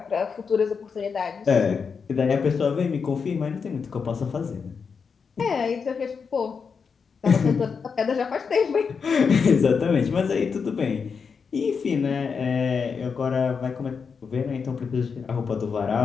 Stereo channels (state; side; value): quieter; right; 5.8 dB